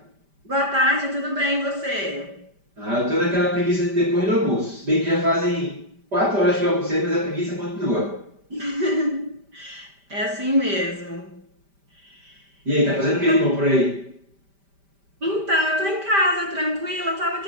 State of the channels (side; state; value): left; late; 5.1 ms